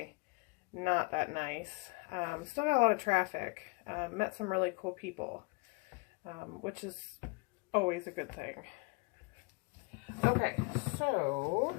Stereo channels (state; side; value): quieter; right; 28.3 dB